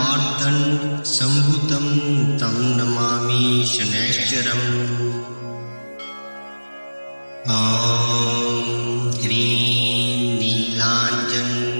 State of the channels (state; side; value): inverted; both; correlation -1.00